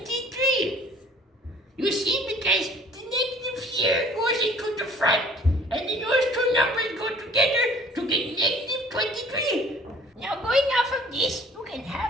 You see, because the negative here goes into the front, and then those two numbers go together to get negative 23. Now, going off of this, you can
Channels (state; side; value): normal; both; correlation 0.52